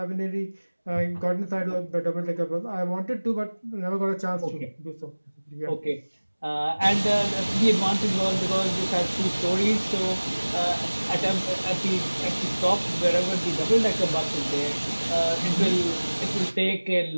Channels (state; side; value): inverted; both; correlation -1.00